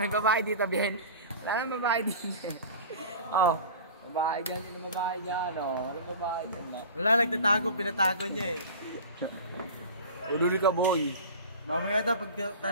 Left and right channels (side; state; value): both; inverted; correlation -0.37